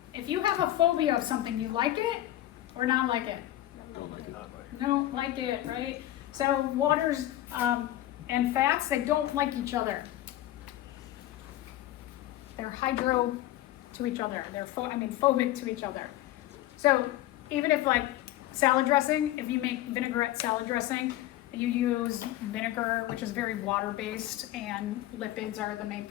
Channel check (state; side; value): quieter; right; 14.4 dB